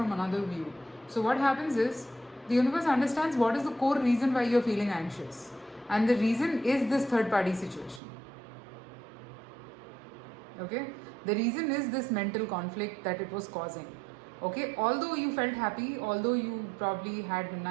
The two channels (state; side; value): drops out; left; at 8.0 s